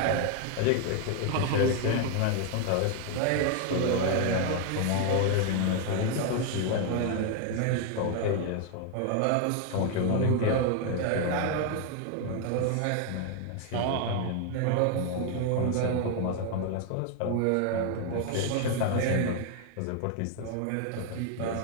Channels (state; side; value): different; both; correlation 0.01